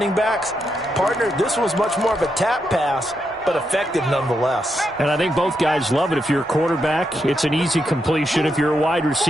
backs. Partner, this was much more of a tap pass, but effective nonetheless. And I think both guys love it. If you're a quarterback, it's an easy completion. If you're a wide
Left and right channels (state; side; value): normal; both; correlation 0.82